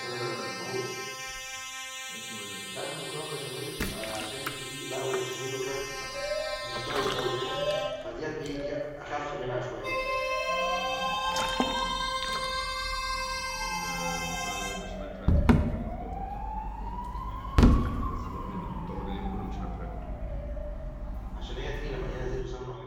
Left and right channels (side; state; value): both; identical; correlation 1.00